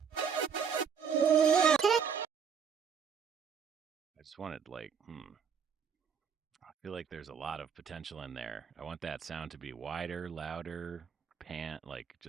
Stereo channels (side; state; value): left; quieter; 6.9 dB